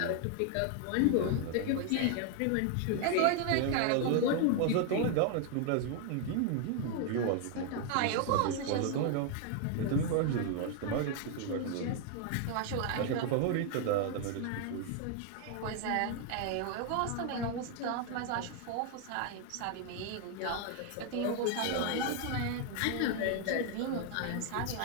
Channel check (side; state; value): both; different; correlation 0.00